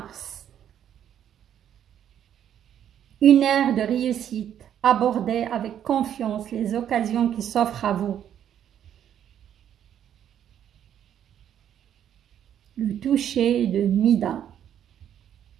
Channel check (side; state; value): left; quieter; 9.9 dB